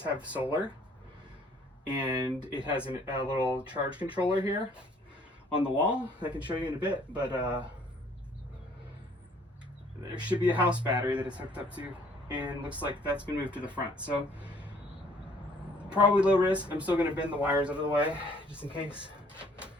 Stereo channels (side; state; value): both; normal; correlation 0.59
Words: have solar, and it has a little charge controller here on the wall. I can show you in a bit, but there should be a house battery that it's hooked up to, and looks like that's been moved to the front. So probably low risk. I'm still going to bend the wires out of the way just in case,